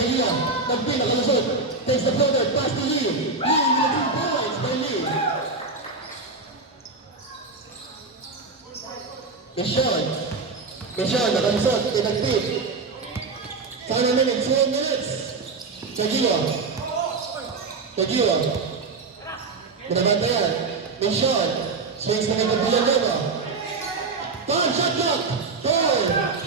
Nagpil nakalusot. Takes the floater. Pass to Lee. With the 2 points by Lee. Michon nakalusot. Nagpil. Final minute. 12 minutes. Caguan. Binabantayan. Michon. Swings na kay Villanueva. Shot clock. 4,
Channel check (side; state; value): left; quieter; 4.0 dB